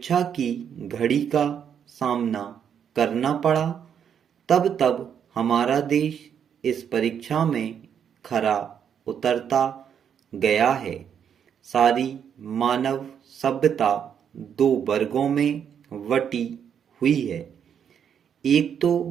की घड़ी का सामना करना पड़ा तब तब हमारा देश इस परीक्षा में खरा उतरता गया है। सारी मानव सभ्यता 2 वर्गों में बटी हुई है। एक तो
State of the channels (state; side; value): quieter; left; 8.2 dB